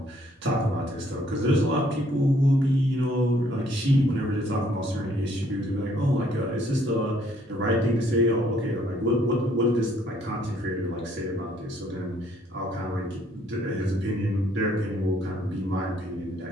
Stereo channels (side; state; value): both; normal; correlation 0.64